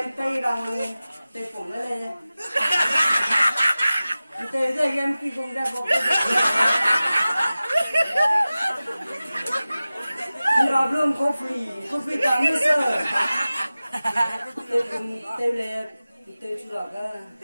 tay bằng tay phủng nó lên tay ra em khi cùng ra bộ nó luôn coffee tám mươi sơ tôi cùng tôi lên tôi chú lọc á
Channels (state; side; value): inverted; both; correlation -0.96